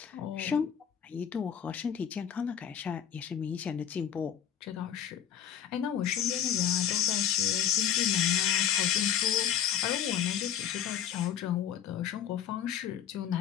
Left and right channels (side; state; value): right; quieter; 9.3 dB